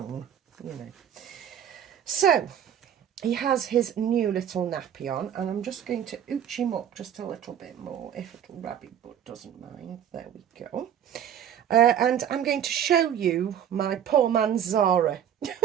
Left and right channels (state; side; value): quieter; left; 9.6 dB